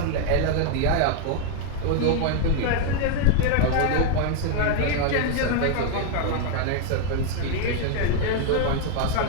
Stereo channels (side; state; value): both; different; correlation 0.00